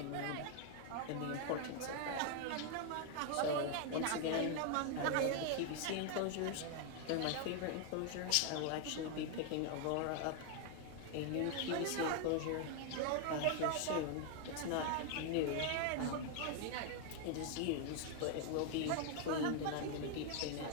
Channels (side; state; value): both; different; correlation 0.00